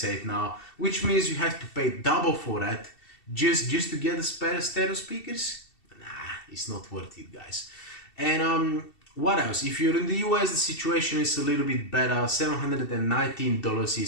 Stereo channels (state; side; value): late; right; 2.7 ms